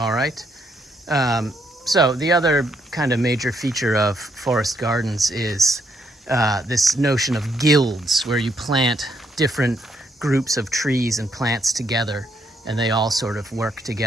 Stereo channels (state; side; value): normal; both; correlation 0.74